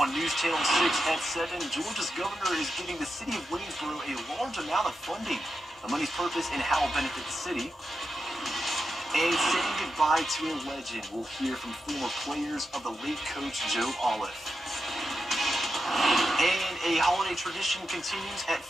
News Channel 6 at 7, Georgia's governor is giving the city of Waynesboro a large amount of funding. The money's purpose and how it will benefit the city. And saying goodbye to a legend, we'll hear from former players of the late coach Joe Olive. And a holiday tradition continues at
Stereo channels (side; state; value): both; normal; correlation 0.88